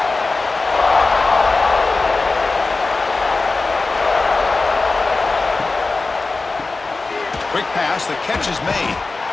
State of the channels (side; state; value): right; quieter; 3.7 dB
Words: Quick pass. The catch is made.